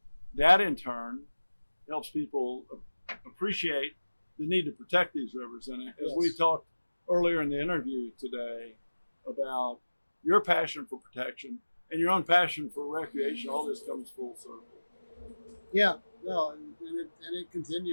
that in turn helps people appreciate the need to protect these rivers. And as we talked earlier in the interview today about your passion for protection and your own passion for recreation, all this comes full circle. Yeah. No, and it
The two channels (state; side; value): inverted; both; correlation -1.00